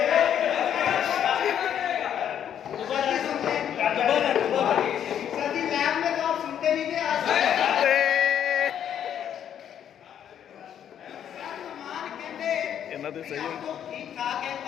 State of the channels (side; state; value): right; quieter; 9.5 dB